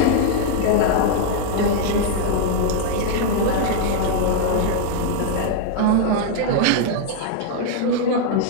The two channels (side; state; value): both; different; correlation 0.00